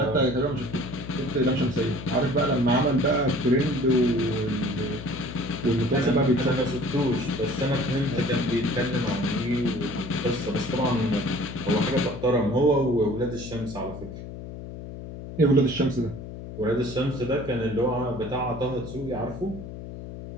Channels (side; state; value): left; noise; hum, 11 dB below the sound